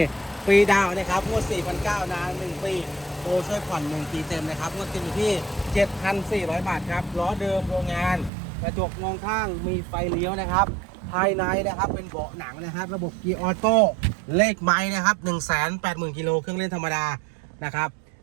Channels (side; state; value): left; drops out; at 8.3 s